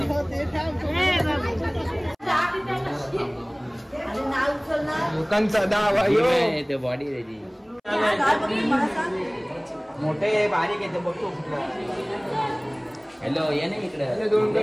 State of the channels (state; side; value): identical; both; correlation 1.00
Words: लोकांचा दावा ते बॉडी रेडी मोठे बारीक येते बघतो. हॅलो ये ना इकडे. दोन